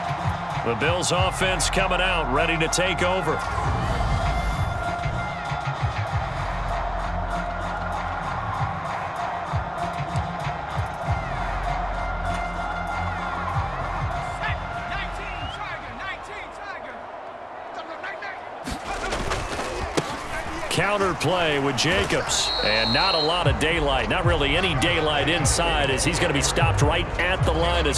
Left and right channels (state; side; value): identical; both; correlation 1.00